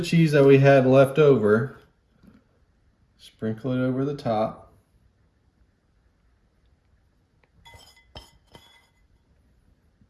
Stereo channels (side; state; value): both; identical; correlation 1.00